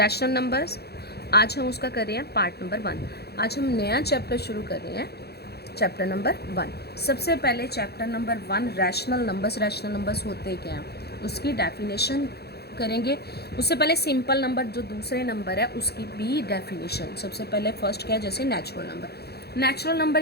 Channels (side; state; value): right; late; 0.47 ms